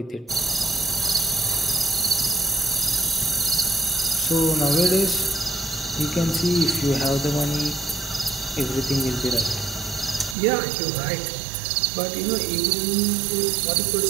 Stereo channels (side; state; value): left; drops out; at 10.4 s